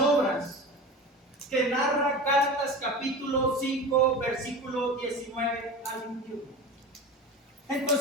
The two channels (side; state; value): both; normal; correlation 0.31